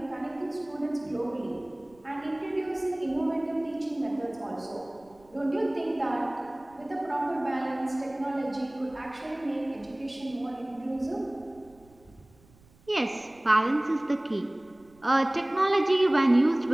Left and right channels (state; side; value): noise; right; rumble, 29 dB below the sound